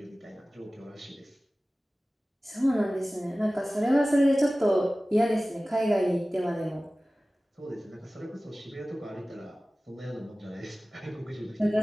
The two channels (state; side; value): normal; both; correlation 0.97